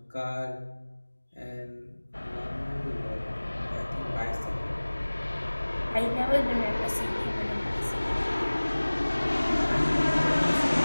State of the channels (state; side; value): inverted; both; correlation -1.00